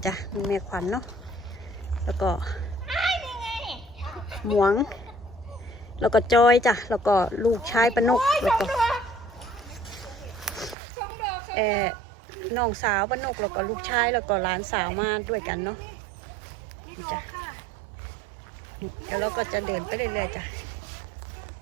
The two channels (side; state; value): left; drops out; at 10.8 s